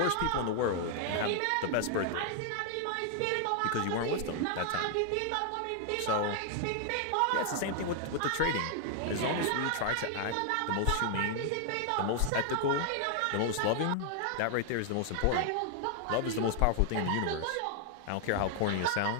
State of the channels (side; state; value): both; different; correlation 0.00